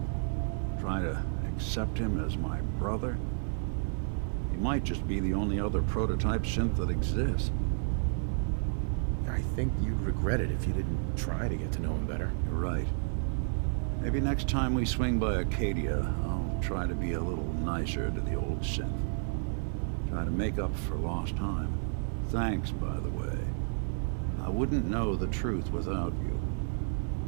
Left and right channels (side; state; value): left; silent; digital silence